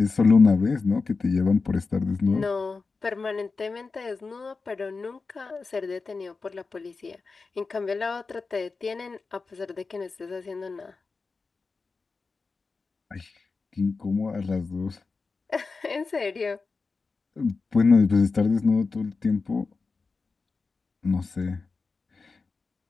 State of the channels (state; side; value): quieter; right; 4.3 dB